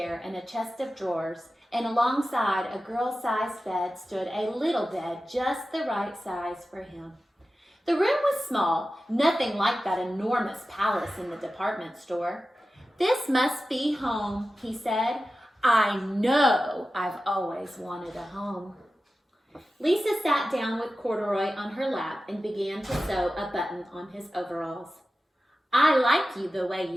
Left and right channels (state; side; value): normal; both; correlation 0.94